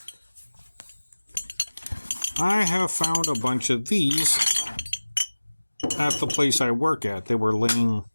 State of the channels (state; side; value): inverted; both; correlation -1.00